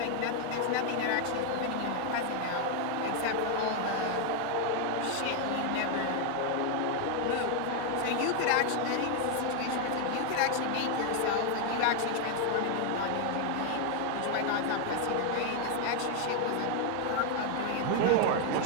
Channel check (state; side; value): different; both; correlation 0.01